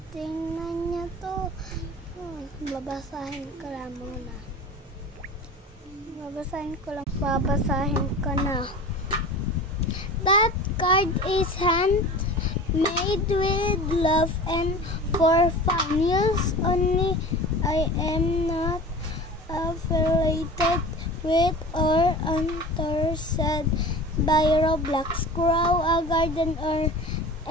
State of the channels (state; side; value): normal; both; correlation 0.36